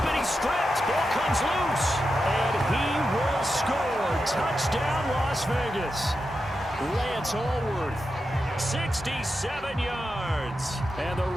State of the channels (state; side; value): normal; both; correlation 0.89